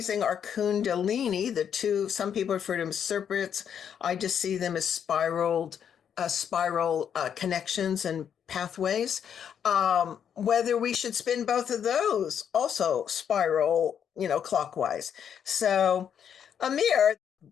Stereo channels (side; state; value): right; quieter; 8.3 dB